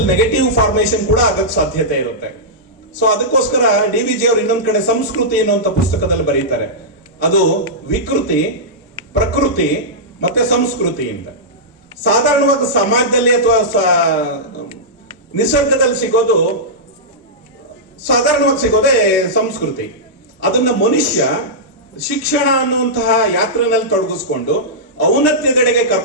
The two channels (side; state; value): both; normal; correlation -0.12